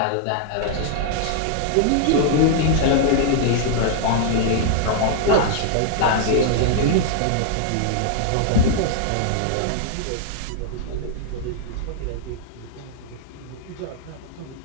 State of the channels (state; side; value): different; both; correlation -0.01